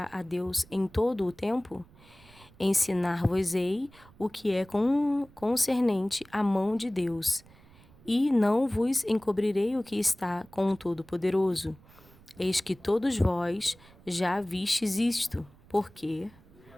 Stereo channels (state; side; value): noise; right; rumble, 25 dB below the sound